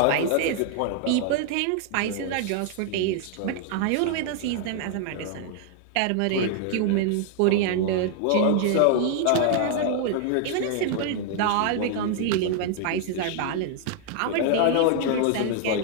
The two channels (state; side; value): different; both; correlation 0.00